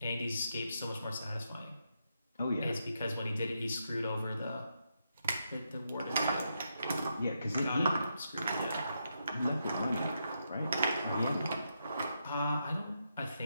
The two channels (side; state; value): both; inverted; correlation -0.82